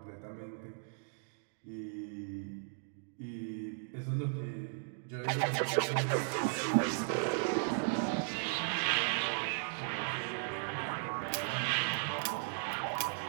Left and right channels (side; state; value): left; silent; digital silence